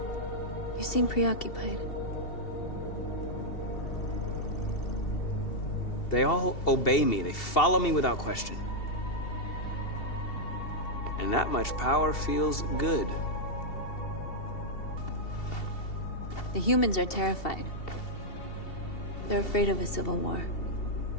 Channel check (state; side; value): late; right; 2.7 ms